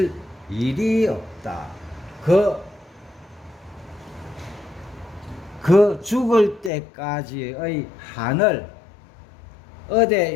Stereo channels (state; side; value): drops out; right; at 6.7 s